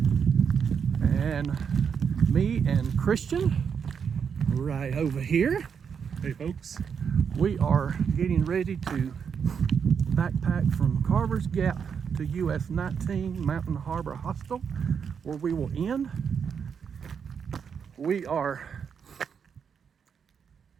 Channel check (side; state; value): left; quieter; 6.9 dB